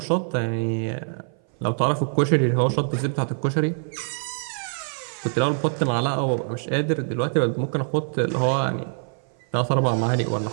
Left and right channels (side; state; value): left; silent; 59 dB below the other